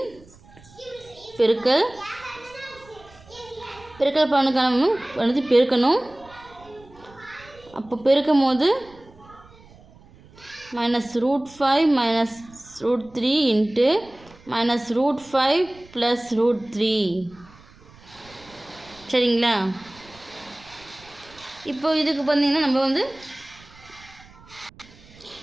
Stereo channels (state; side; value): noise; right; rumble, 24 dB below the sound